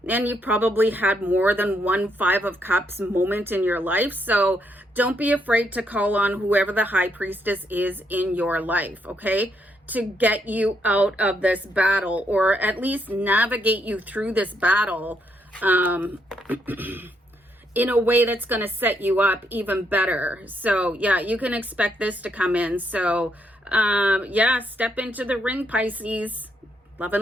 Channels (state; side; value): normal; both; correlation 0.76